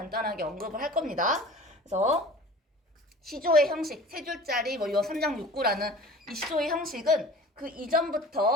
언급을 할 겁니다. 그래서 시조의 형식, 세 줄짜리 요 3장 6구라는 이 시조의 형식은 그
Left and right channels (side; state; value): both; normal; correlation 0.43